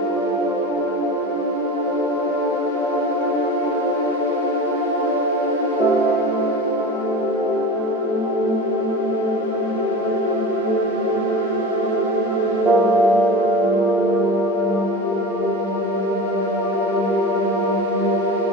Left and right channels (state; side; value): normal; both; correlation 0.30